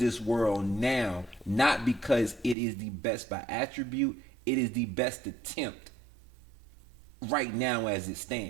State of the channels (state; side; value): drops out; left; at 2.6 s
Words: world now, not because it is the best by attribute. It is the best attempt right now as it